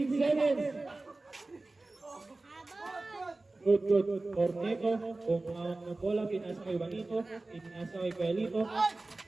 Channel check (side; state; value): left; quieter; 3.1 dB